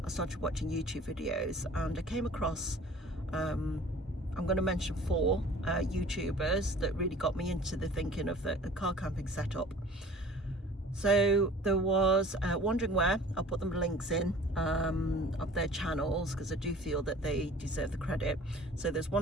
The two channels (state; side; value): normal; both; correlation 0.47